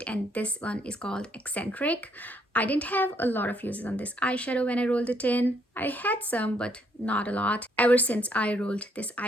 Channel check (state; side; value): normal; both; correlation 0.71